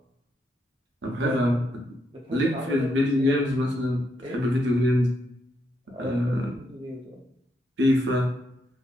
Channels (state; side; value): normal; both; correlation 0.79